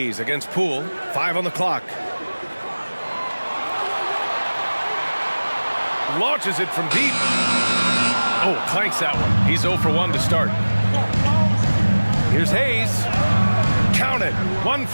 against Poole. 5 on the clock. Launches it from deep. Oh, clanks that one. He's 0 for 1 to start. Here's Hayes. Count it. 1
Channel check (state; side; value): inverted; both; correlation -1.00